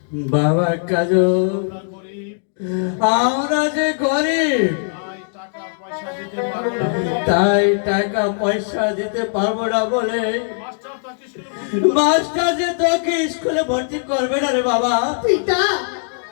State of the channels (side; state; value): right; silent; digital silence